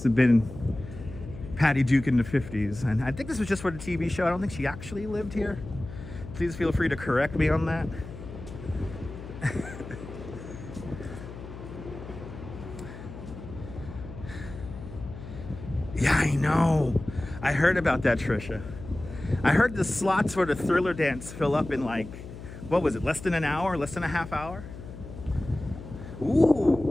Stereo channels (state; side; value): noise; left; hum, 13 dB below the sound